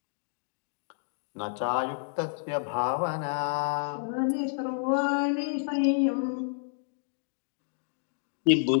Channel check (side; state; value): right; silent; digital silence